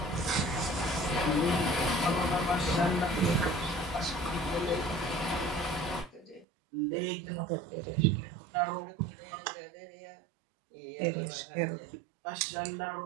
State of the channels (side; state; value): left; drops out; at 6.5 s